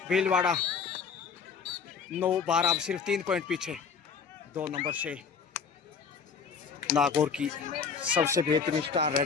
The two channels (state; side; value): quieter; right; 5.9 dB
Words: भीलवाड़ा 9-12, अब सिर्फ 3 पॉइंट पीछे। 2 नंबर से नागौर की सबसे बेहतरीन स्टार